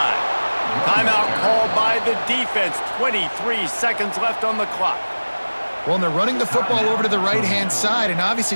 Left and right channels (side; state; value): both; inverted; correlation -1.00